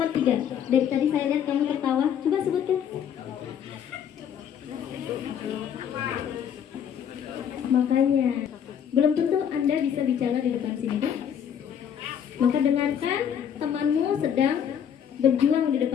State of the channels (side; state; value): right; quieter; 8.7 dB